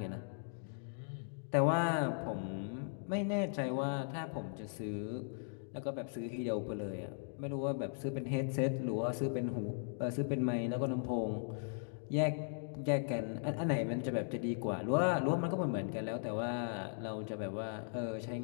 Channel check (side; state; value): right; silent; digital silence